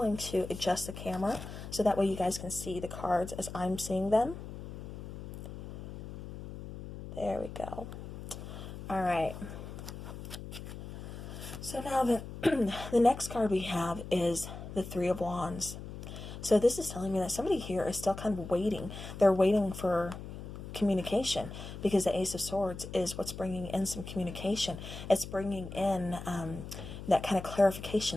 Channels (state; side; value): noise; left; hum, 10 dB below the sound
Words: to adjust the camera so that way you guys can see the cards as I'm seeing them. There we go. All right. So now the next card we have is the Three of Wands. So this is telling me that somebody here is still kind of waiting. They're waiting for communication, because the Ace of Swords is what's bringing in some communication. It's bringing in that kind of